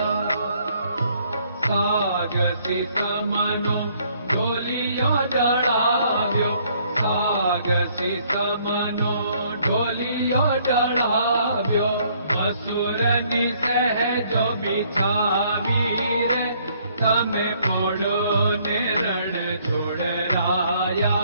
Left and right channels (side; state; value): both; inverted; correlation -0.65